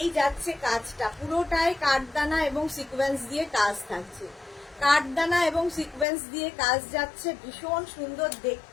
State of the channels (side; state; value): right; drops out; at 6.1 s